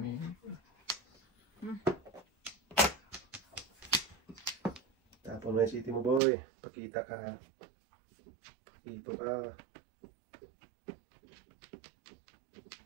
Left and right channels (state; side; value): drops out; left; at 6.2 s